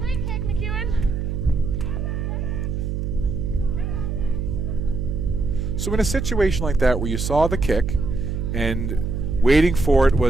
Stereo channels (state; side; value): noise; right; hum, 2 dB below the sound